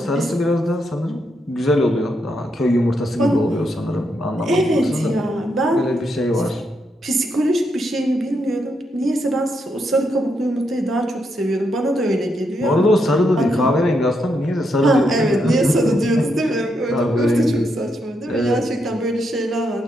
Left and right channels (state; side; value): normal; both; correlation 0.80